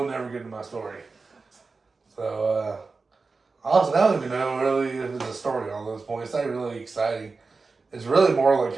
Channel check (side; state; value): left; quieter; 4.1 dB